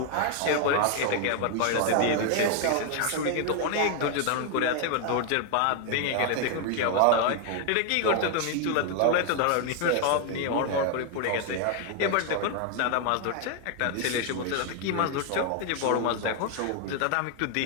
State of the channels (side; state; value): both; different; correlation 0.00